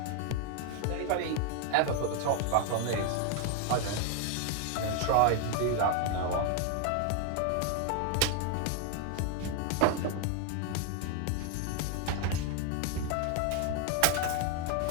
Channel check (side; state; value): both; different; correlation 0.01